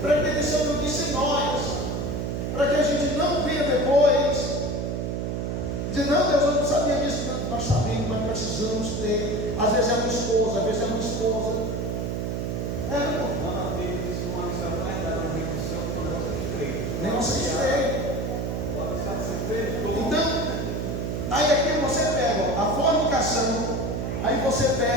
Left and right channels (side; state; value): right; noise; hum, 2 dB below the sound